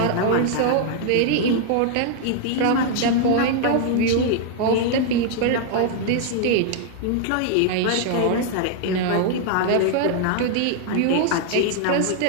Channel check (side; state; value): both; different; correlation 0.00